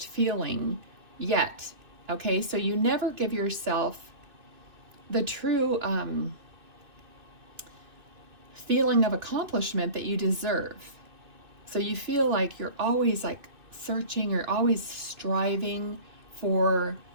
feeling yet. Okay, so you never give yourself the true feeling of accomplishment that you deserve. So you feel like you're always like searching, you're always striving for,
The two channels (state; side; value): late; left; 2.6 ms